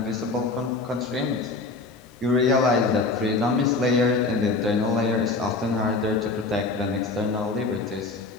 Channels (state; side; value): quieter; right; 3.6 dB